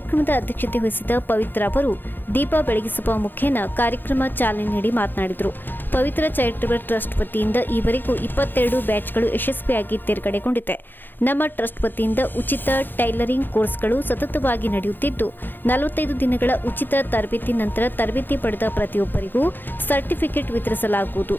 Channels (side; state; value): right; late; 0.093 ms